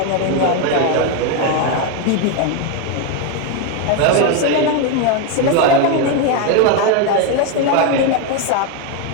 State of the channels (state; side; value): different; both; correlation 0.02